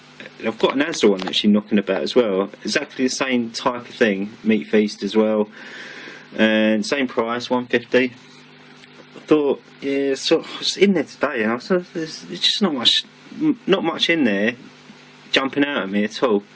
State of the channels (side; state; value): both; identical; correlation 1.00